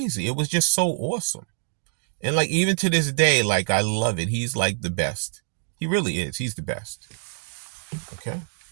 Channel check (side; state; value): left; silent; digital silence